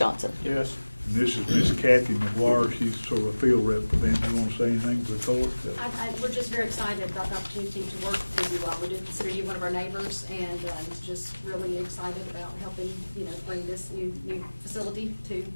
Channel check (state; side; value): inverted; both; correlation -1.00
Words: Yes. And this is Miss Kathy McGuire. She's sort of a field rep for them. You want to say anything to the court? We're just very excited about the opportunity to work with you all. We do consider you one of our neighbors, and just really excited about helping, bring this new facility to